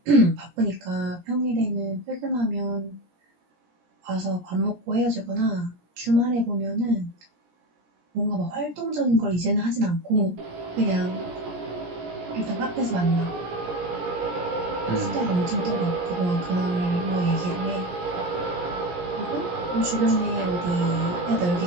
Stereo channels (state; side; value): late; left; 17 ms